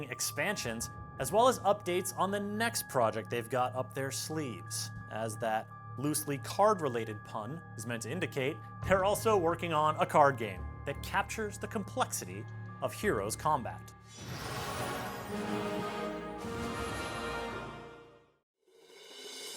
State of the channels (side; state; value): both; identical; correlation 1.00